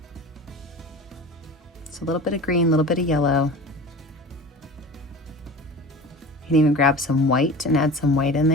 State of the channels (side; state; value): both; normal; correlation 0.35